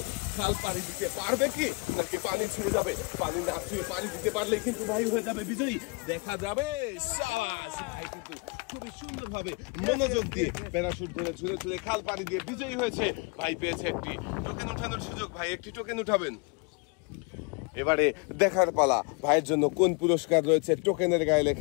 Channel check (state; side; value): quieter; right; 30.2 dB